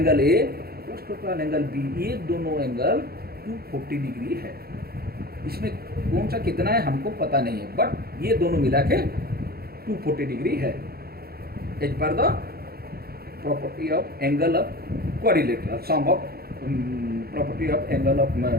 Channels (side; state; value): left; late; 0.45 ms